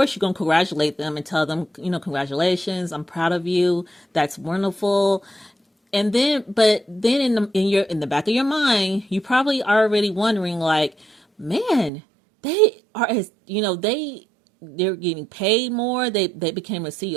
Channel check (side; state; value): left; drops out; at 11.9 s